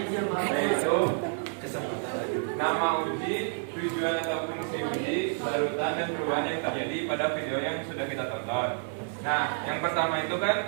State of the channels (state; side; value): silent; left; 58 dB below the other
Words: yaitu nama uji, tujuan atau fungsi uji, larutan dan perubahan yang terjadi pada video yang sudah kita tonton. Nah, yang pertama itu